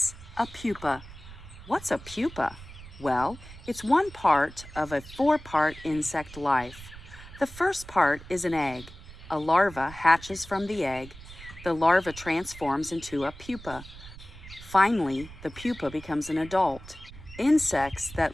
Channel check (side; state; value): right; noise; rumble, 16 dB below the sound